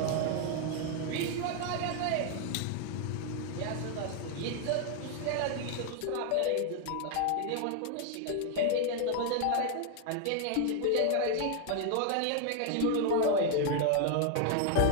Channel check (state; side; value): different; both; correlation 0.00